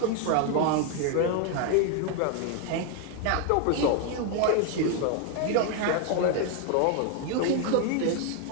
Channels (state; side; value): different; both; correlation 0.01